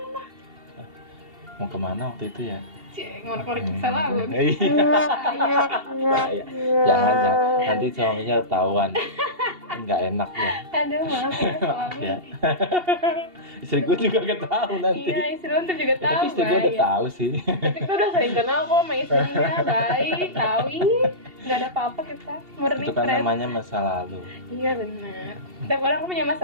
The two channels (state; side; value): late; left; 2.7 ms